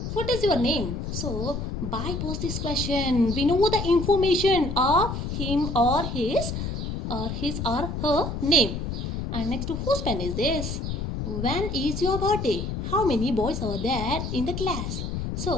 What is your name? So, by pose this question, we know the information of him or his or her name. And next, whose pen is this? When is your birthday? How many boys are there in the class?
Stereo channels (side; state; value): left; noise; rumble, 4 dB below the sound